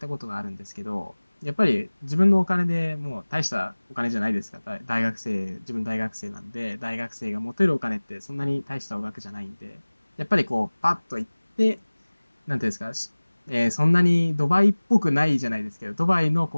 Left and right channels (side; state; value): both; inverted; correlation -1.00